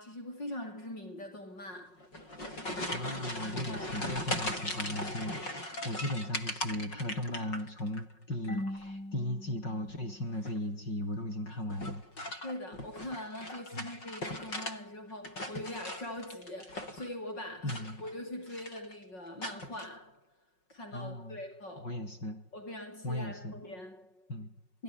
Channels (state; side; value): late; right; 5.5 ms